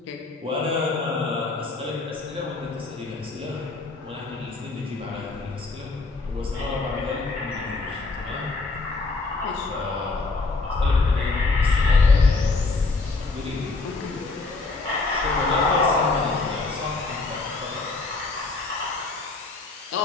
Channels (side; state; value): right; quieter; 3.7 dB